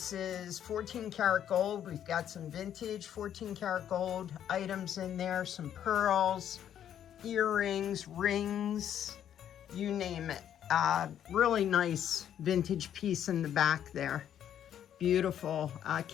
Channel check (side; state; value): right; quieter; 10.0 dB